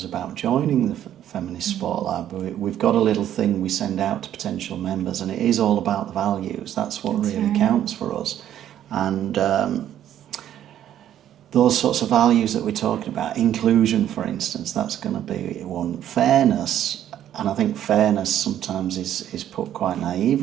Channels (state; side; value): quieter; left; 11.1 dB